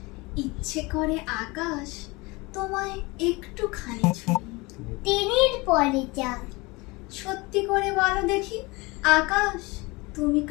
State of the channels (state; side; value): quieter; right; 24.5 dB